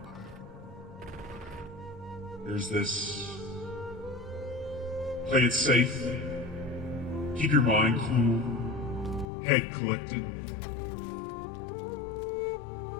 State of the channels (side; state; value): right; drops out; at 9.2 s